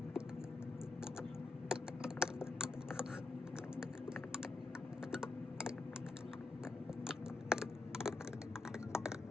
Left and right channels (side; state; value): right; quieter; 3.4 dB